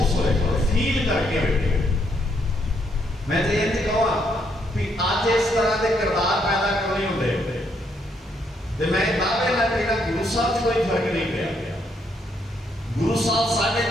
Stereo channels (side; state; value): both; normal; correlation 0.74